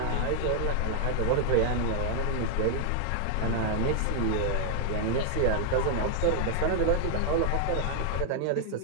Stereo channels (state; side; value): different; both; correlation 0.00